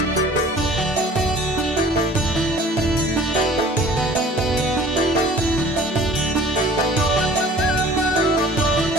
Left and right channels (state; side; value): normal; both; correlation 0.49